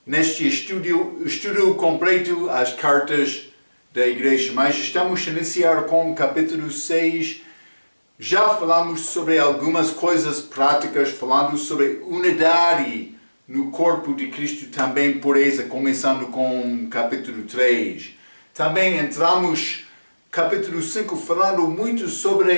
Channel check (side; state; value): both; inverted; correlation -1.00